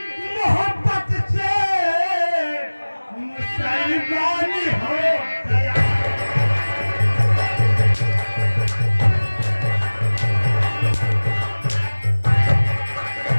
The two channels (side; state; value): both; inverted; correlation -1.00